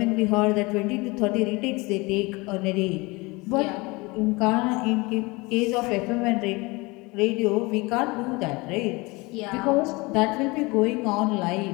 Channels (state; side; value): quieter; right; 24.5 dB